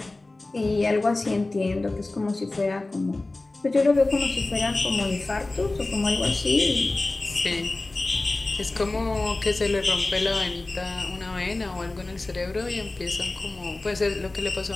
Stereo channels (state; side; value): quieter; right; 3.0 dB